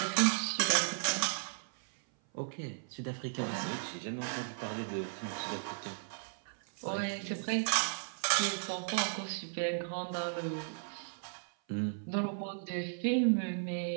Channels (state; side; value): silent; left; 54 dB below the other